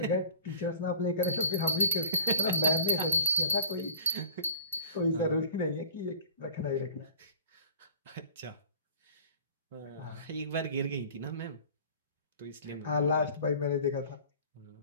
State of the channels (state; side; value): inverted; both; correlation -0.43